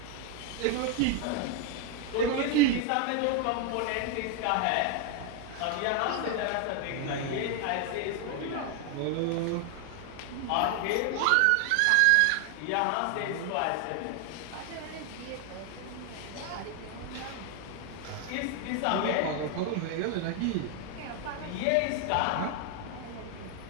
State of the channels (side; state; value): both; different; correlation 0.01